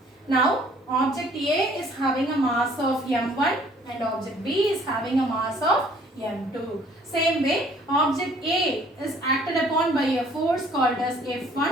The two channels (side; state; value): both; normal; correlation 0.57